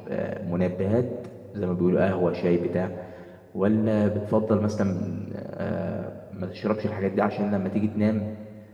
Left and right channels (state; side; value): identical; both; correlation 1.00